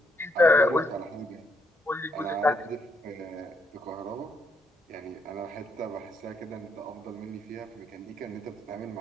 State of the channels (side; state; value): both; normal; correlation 0.74